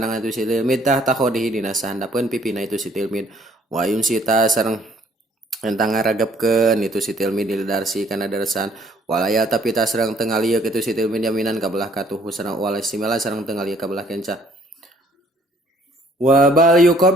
itu si tilmid tah takhodihi dina sahandapeun pipina itu si tilmid wa yunsita sareng entang ngaragepkeun itu si tilmid didarsi kana darsan walaya tapi tah sareng teu ngalieu itu si tilmid yaminan ka belah katuh sareng walaya simala sareng teu ngalieu ka belah kenca wa bal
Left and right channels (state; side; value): normal; both; correlation 0.61